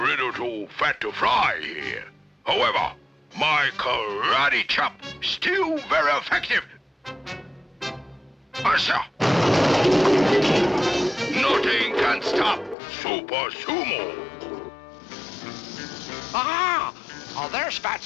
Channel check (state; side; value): drops out; right; at 12.8 s